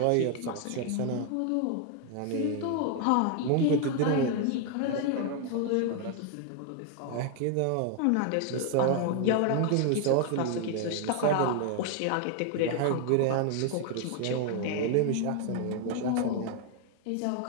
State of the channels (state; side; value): different; both; correlation 0.00